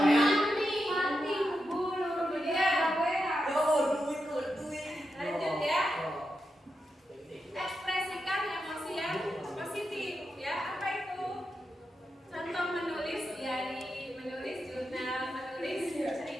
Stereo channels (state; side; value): normal; both; correlation 0.87